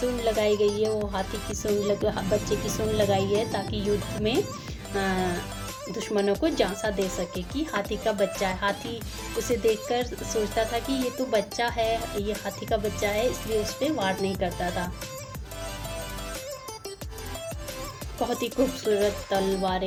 लगाई गई है वो हाथी की सूंड बच्चे की सूंड लगाई है ताकि युद्ध में दुश्मनों को झांसा दे सके कि हाथी का बच्चा है। हाथी उसे देखकर सोचता था कि ये तो बच्चा है, ये हाथी का बच्चा है, इसलिए उस पर वार नहीं करता था। बहुत ही खूबसूरत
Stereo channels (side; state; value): both; identical; correlation 1.00